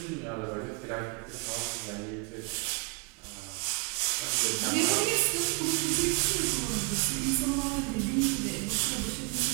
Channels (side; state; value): left; quieter; 31.0 dB